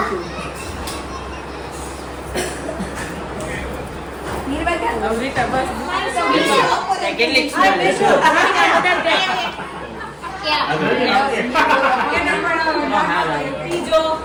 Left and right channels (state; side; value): identical; both; correlation 1.00